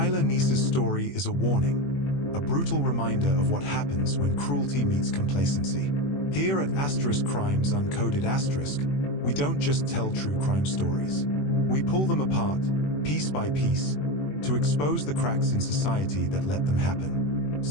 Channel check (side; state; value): right; late; 21 ms